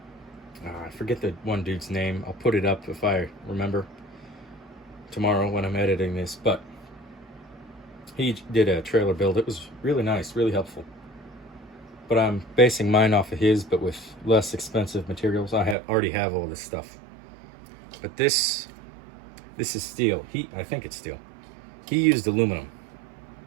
I forget the one dude's name. I'll put it up if I remember tomorrow when I'm editing this. But he did a trailer build. It was really nice, really helpful. But I'm basing mine off of his, but with less expensive materials. I already have all this stuff. But this is steel. I think it's steel. He used aluminum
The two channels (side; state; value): left; drops out; at 15.8 s